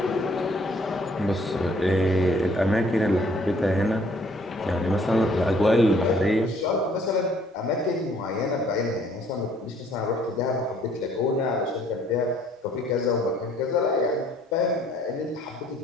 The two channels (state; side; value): normal; both; correlation 0.61